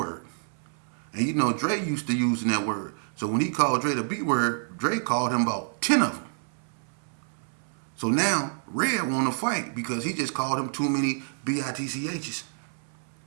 And Dre used to using that word. So when he called Dre the B word, Dre called him about 10 of them. So now Red want to fight because he just called him too many BITCHs.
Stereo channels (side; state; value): left; silent; 59 dB below the other